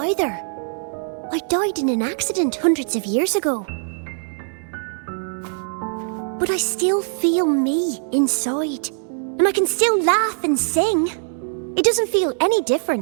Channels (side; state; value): left; silent; digital silence